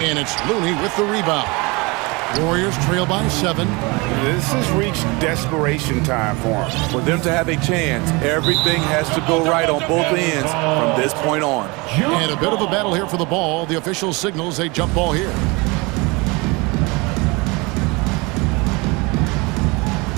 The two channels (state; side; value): quieter; left; 26.4 dB